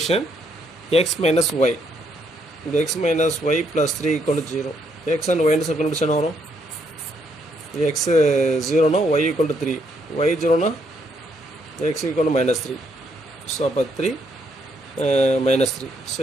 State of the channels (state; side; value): normal; both; correlation 0.74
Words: x minus y, இந்த x minus y plus 3 equal to 0. x and y ன்னு கண்டுபிடிச்சா என்ன வரும்? x 0 னா y equal to 3, y 0 னா x equal to minus 3. So அப்போ 3 minus 3. ஸோ